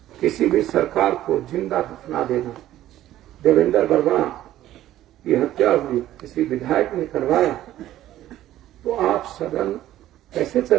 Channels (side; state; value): left; quieter; 13.5 dB